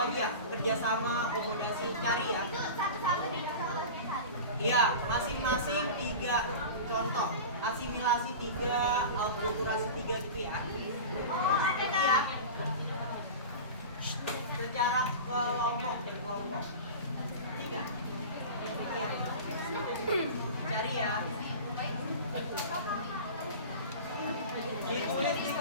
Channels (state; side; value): inverted; both; correlation -0.32